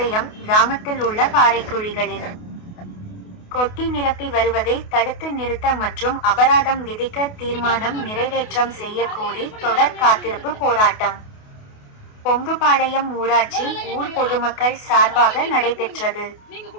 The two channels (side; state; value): right; late; 28 ms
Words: கிராமத்தில் உள்ள பாறைக்குழிகளில் கொட்டி நிரப்பி வருவதை தடுத்து நிறுத்த மற்றும் அபராதம் விதிக்க தீர்மானம் நிறைவேற்றம் செய்ய கோரி தொடர் காத்திருப்பு போராட்டம் பொங்குபாளையம் ஊராட்சி ஊர் பொதுமக்கள் சார்பாக நடைபெற்றது.